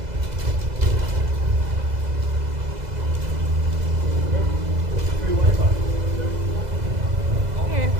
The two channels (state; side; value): late; left; 2.0 ms